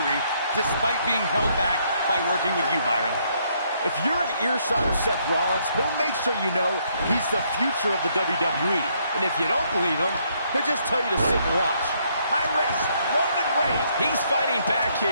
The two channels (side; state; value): both; inverted; correlation -0.71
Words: despite being held back by working with you, Byron? If you're an earshot of Seth Rollins, he'll make sure you know he's the future of the WWE. And if you don't believe him, he'll just tell you to sit and watch. High risk. Roman Reigns. He's fighting back